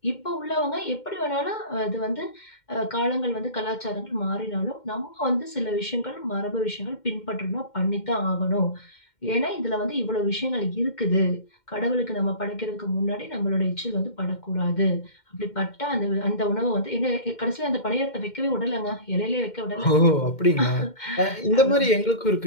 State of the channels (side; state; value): right; late; 2.1 ms